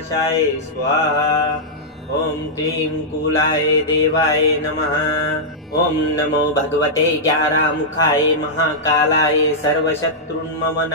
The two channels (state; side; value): normal; both; correlation -0.09